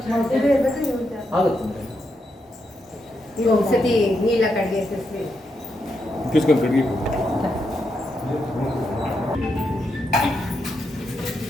ఆగుతుంది ఇవి ఒకసారి నీళ్ళ కడిగేసేసి తీసుకొని కడిగి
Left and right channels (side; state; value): both; normal; correlation 0.82